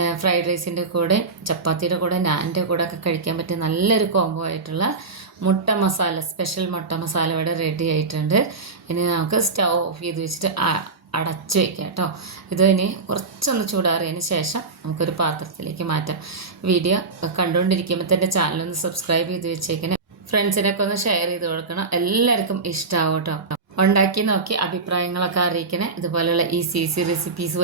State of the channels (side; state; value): left; quieter; 4.1 dB